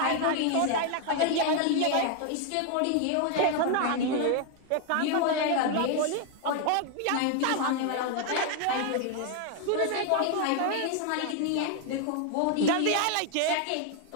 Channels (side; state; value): both; different; correlation 0.01